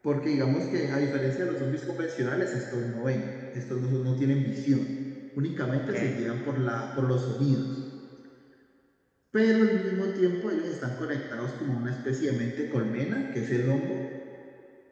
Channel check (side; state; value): both; identical; correlation 1.00